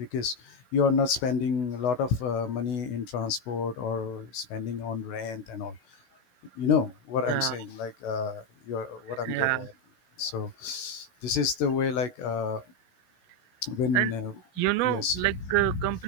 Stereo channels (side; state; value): right; late; 16 ms